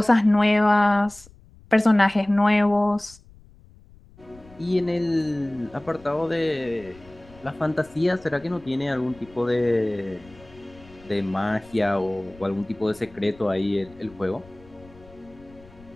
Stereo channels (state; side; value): noise; left; rumble, 24 dB below the sound